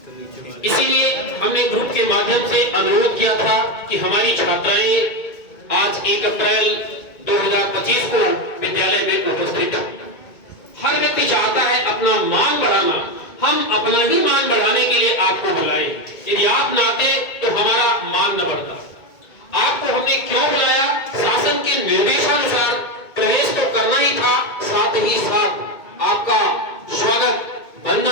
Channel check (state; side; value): late; right; 2.2 ms